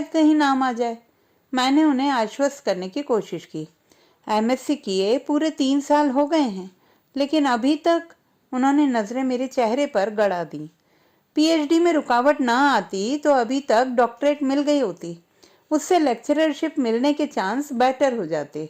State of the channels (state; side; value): identical; both; correlation 1.00